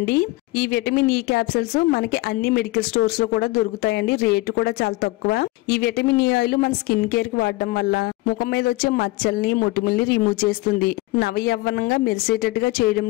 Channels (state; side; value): quieter; right; 20.8 dB